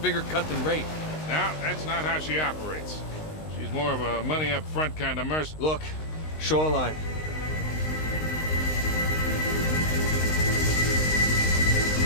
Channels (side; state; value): right; late; 19 ms